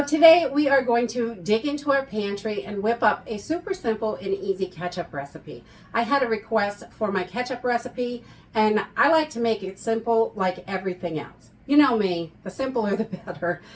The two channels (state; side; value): identical; both; correlation 1.00